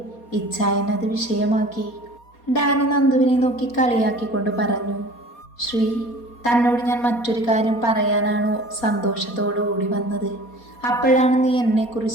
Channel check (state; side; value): late; right; 4.2 ms